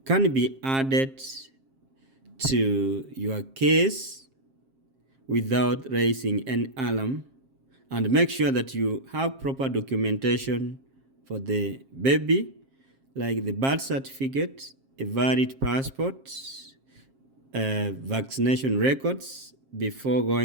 can be added to your case without raising an alarm, and make sure that you have proper documentation for the baby, like the birth certificate, a valid passport, vaccination records before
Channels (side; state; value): left; late; 7.5 ms